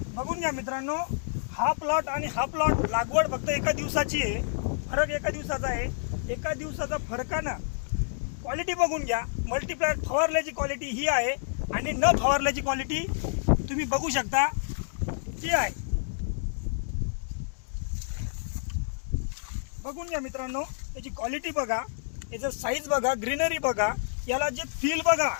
बघून घ्या मित्रांनो, हा प्लॉट आणि हा प्लॉट लागवड फक्त एका दिवसाची आहे. फरक एका दिवसाचा आहे. एका दिवसाचा फरकानं क्वालिटी बघून घ्या. मल्टीप्लायर फवारल्याची क्वालिटी ही आहे आणि न फवारल्याची क्वालिटी तुम्ही बघू शकता ती आहे. बघून घ्या मित्रांनो, त्याची क्वालिटी बघा, याचं साईज बघा, ग्रीनरी बघा, याला जे फील बघा,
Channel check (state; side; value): silent; right; digital silence